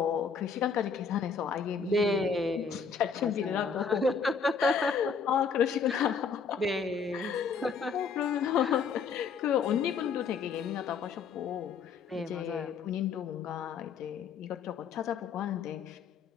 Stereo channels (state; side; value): quieter; right; 5.7 dB